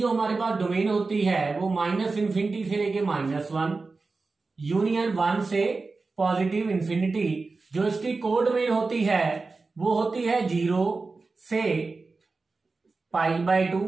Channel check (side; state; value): left; quieter; 3.9 dB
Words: हमारे पास डोमेन होती है वो -इन्फिनिटी से लेके -1 यूनियन 1 से पॉजिटिव इन्फिनिटी। जो इसकी कोड डोमेन होती है वो होती है 0 से पाई/2